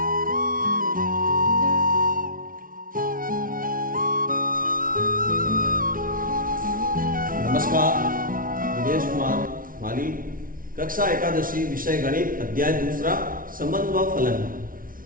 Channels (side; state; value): left; late; 0.40 ms